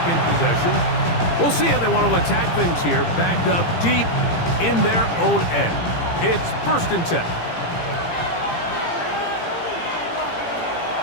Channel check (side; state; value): right; late; 17 ms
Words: possession. We'll see how they want to attack things here, backed up deep in their own end. It's 1st and 10.